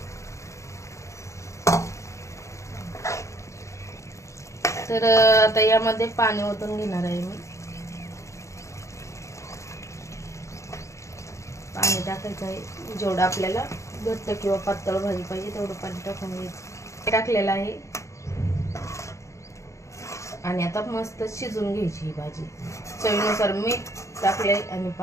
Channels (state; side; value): late; right; 0.15 ms